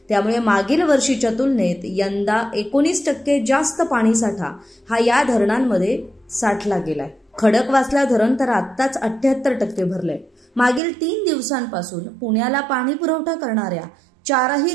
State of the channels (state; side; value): drops out; left; at 10.8 s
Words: त्यामुळे मागील वर्षीच्या तुलनेत यंदा 19% जास्त पाणीसाठा हा या धरणांमध्ये साठला गेलाय। खडकवासला धरण तर आत्ताच 78% भरलंय। मागील 3 दिवसांपासून पुण्याला पाणी पुरवठा करणाऱ्या 4ही